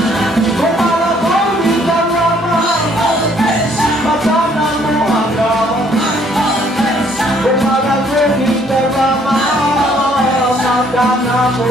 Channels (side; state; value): both; normal; correlation 0.64